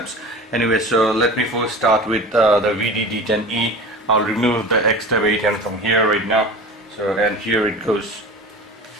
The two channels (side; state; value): both; normal; correlation 0.35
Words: Anyway, so let me first start with the VeeDee D10e. I'll remove the XTAB A10 from here right now. So, and here it goes.